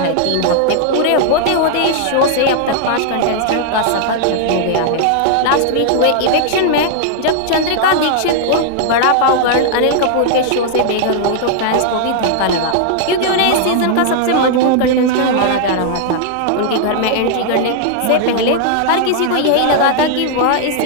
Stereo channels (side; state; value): both; different; correlation -0.01